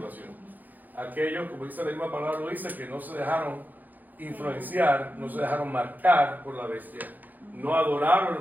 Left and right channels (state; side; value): late; left; 0.084 ms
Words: Aquellos, como dice la misma palabra, lo dice, que no se dejaron influenciar, no se dejaron marcar por la bestia, no